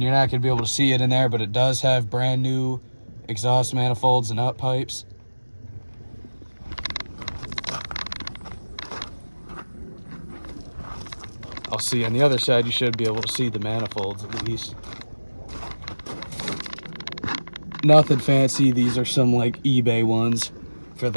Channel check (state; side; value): inverted; both; correlation -1.00